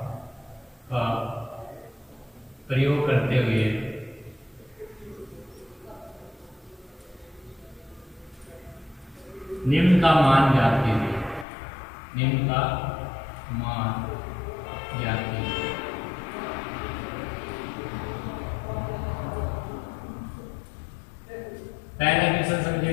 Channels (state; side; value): drops out; right; at 11.5 s